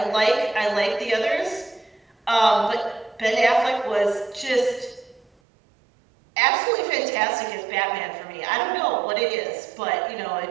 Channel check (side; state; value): left; drops out; at 5.2 s